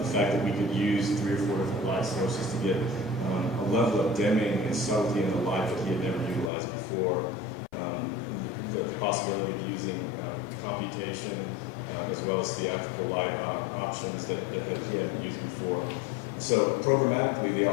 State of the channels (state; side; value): drops out; right; at 6.5 s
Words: fact that we could use 3 or 4 different light sources to get a level of dimming and subtlety in the light that he had never utilized before. The possibility of using computation as well as theatrical light options that he hadn't used before. So programmatically, the